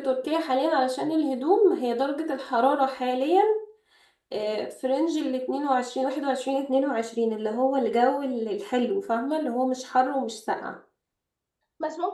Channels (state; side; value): identical; both; correlation 1.00